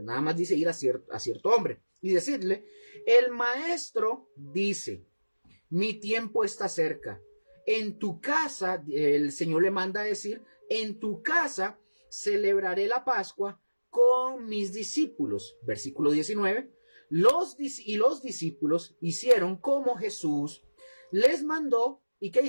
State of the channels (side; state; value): both; inverted; correlation -1.00